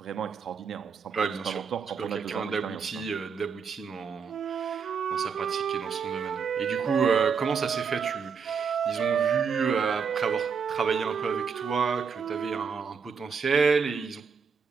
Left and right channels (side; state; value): left; quieter; 6.1 dB